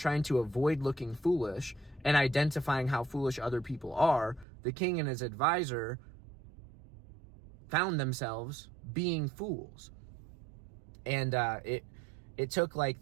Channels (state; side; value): drops out; left; at 4.5 s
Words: to avoid looking foolish and identifying how foolish other people are, the king and his advisor found themselves being fools. And it took like